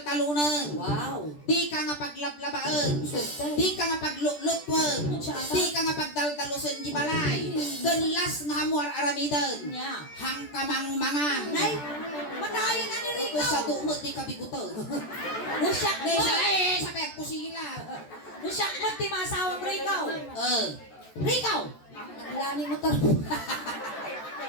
Wow. Di ka nga paglaplabaan. Swerte. Di ka nga paglulutwan. Di ka nga pagdaldalusan di balay. Ganlas nga hamuar aramidan. Nya. Hang kamang mangan. Nay, matayin na ni Rico. Ito sa dumot di ka biguto. Nusak mo. Sa pek ko sila. Nusak mo ti masawang Rico. Rico. Naglani mo to.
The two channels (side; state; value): right; late; 14 ms